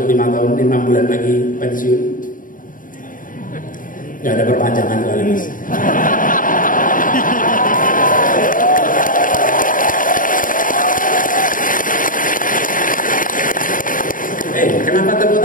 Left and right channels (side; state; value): right; late; 0.39 ms